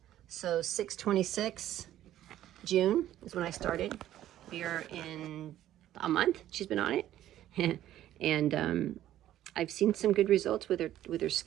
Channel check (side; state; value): left; quieter; 12.7 dB